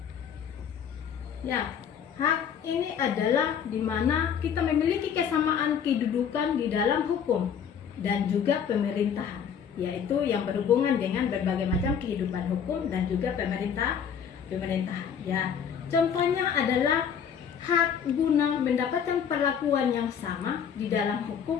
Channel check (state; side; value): quieter; right; 7.7 dB